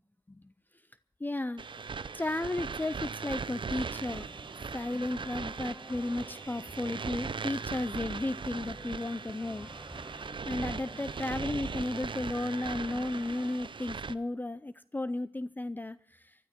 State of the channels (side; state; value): both; normal; correlation 0.79